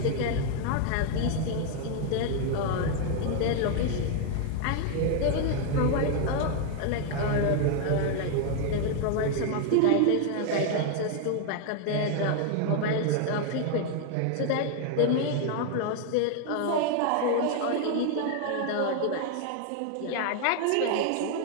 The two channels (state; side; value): different; both; correlation 0.00